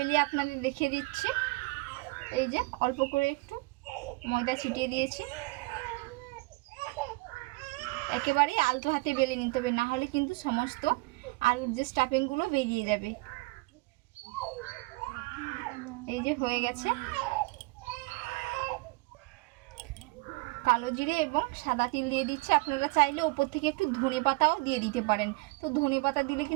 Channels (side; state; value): left; quieter; 24.8 dB